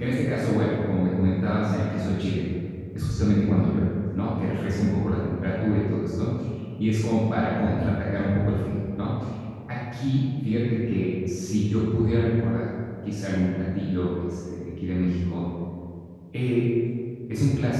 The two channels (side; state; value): both; identical; correlation 1.00